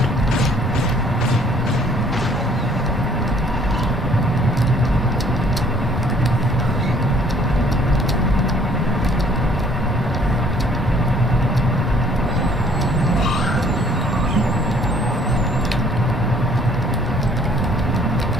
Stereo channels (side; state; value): both; normal; correlation 0.59